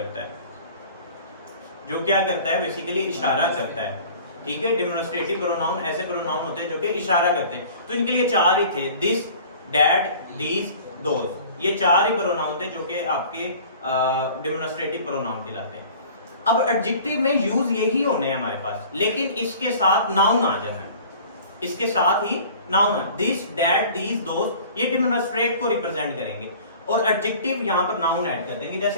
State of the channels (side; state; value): both; inverted; correlation -0.46